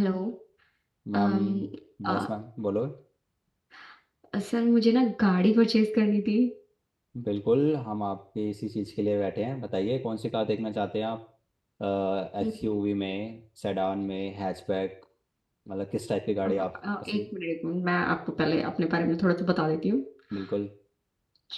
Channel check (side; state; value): both; identical; correlation 1.00